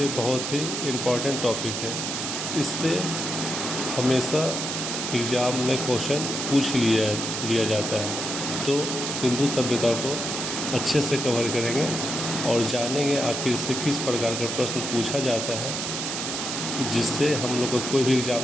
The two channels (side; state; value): right; noise; hiss, 3 dB below the sound